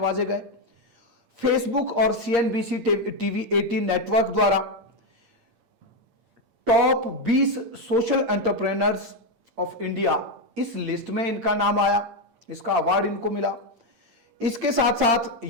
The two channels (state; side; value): late; left; 8.7 ms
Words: गए। फेसबुक और सीएनबीसी टीवी 18 नेटवर्क द्वारा top 20 social entrepreneurs of India, इस लिस्ट में इनका नाम आया, इसका अवार्ड इनको मिला। इसके साथ साथ